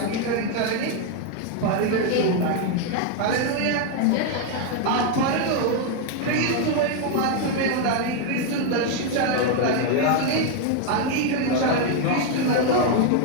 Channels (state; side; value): different; both; correlation 0.01